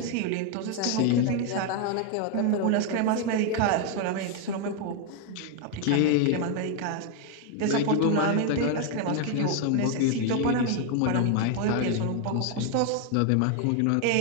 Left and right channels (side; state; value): both; different; correlation 0.01